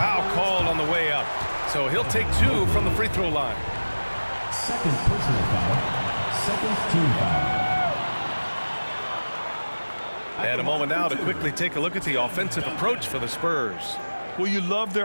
called on the way up. So he'll take 2 from the free throw line. Second personal foul. Second team foul. And a moment now to quickly take a look at the offensive approach for the Spurs. Well, you love their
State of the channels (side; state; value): both; inverted; correlation -1.00